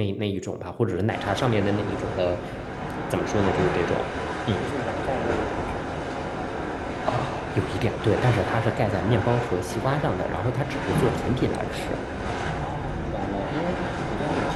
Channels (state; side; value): identical; both; correlation 1.00